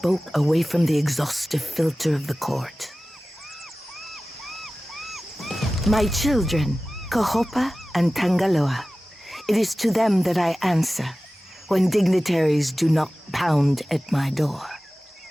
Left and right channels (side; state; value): both; normal; correlation 0.96